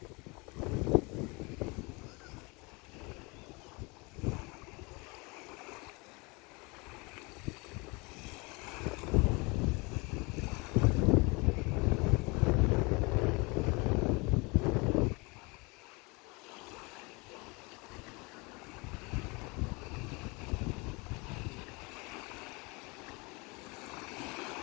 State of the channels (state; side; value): quieter; right; 27.7 dB